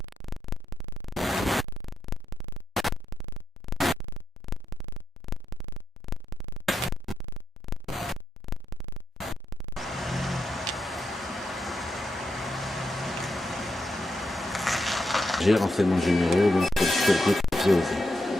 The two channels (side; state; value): both; normal; correlation 0.83